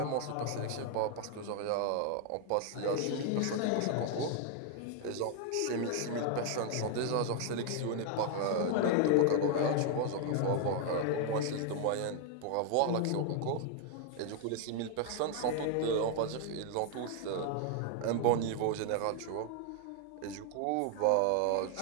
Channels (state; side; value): different; both; correlation 0.00